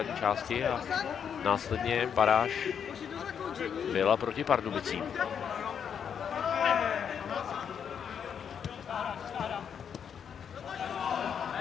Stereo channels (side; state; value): right; quieter; 7.7 dB